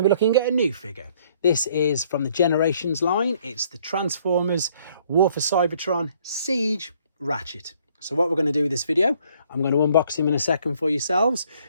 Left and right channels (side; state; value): both; inverted; correlation -0.63